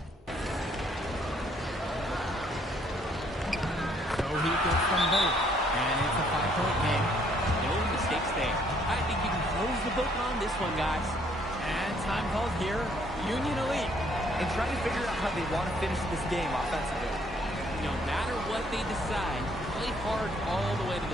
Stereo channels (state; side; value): normal; both; correlation 0.65